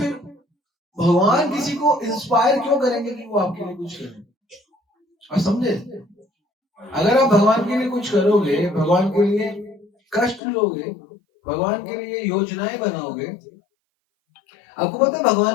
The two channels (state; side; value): drops out; right; at 10.4 s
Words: भगवान किसी को इंस्पायर क्यों करेंगे कि वो आपके लिए कुछ करें? और समझे, अगर आप भगवान के लिए कुछ करोगे, भगवान के लिए कष्ट लोगे, भगवान के लिए योजनाएं बनाओगे। आपको पता है